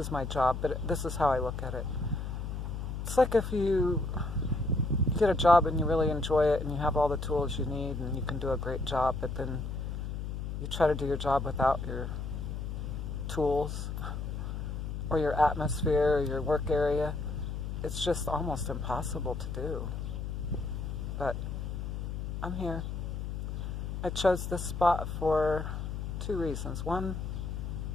my job, but this is how I look at it. It's like if you get a job and you really enjoy it and you have all the tools you need and you can do a great job, but then you try to do your job without your tools or your atmosphere or your work area. It's just almost impossible to do. But I'm here. I chose this spot for two reasons. One,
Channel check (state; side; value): noise; left; hum, 4 dB below the sound